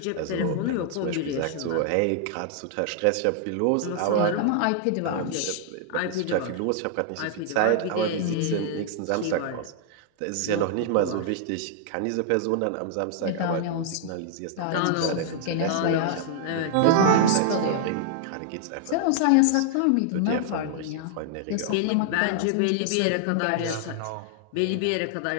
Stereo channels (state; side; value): different; both; correlation 0.00